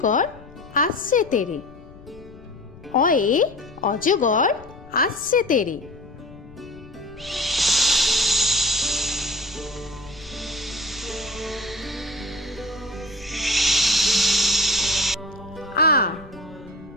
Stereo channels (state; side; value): noise; left; rumble, 20 dB below the sound